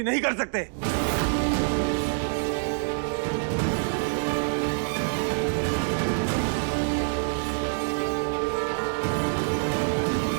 नहीं कर सकते।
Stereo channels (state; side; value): silent; left; digital silence